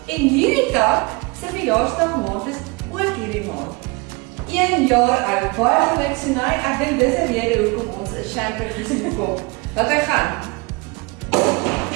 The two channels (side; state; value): left; quieter; 27.3 dB